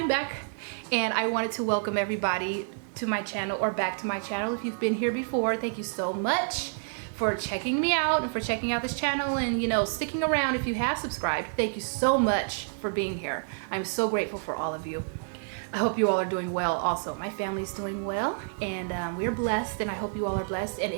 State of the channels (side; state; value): left; silent; digital silence